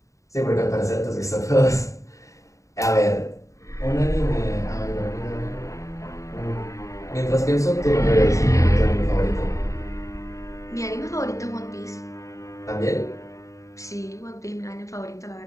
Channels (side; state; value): right; late; 0.15 ms